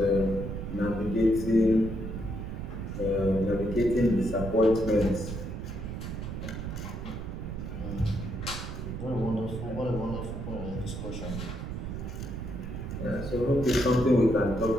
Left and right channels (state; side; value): noise; right; rumble, 6 dB below the sound